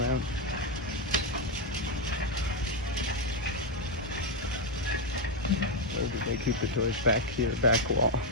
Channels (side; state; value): both; normal; correlation 0.04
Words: Where did they keep the toys? Back here, back wall.